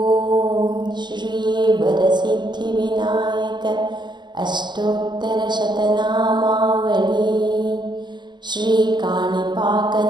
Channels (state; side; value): late; left; 0.22 ms